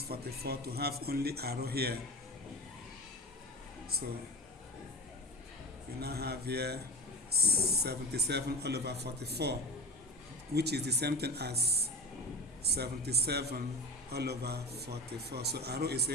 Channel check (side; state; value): both; normal; correlation 0.30